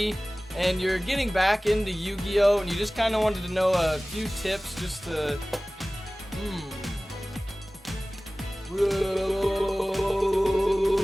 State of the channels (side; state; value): both; normal; correlation 0.98